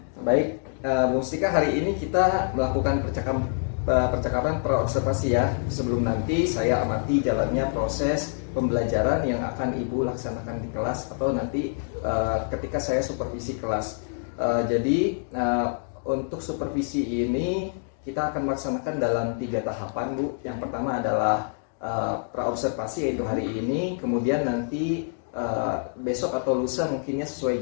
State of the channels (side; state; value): right; silent; digital silence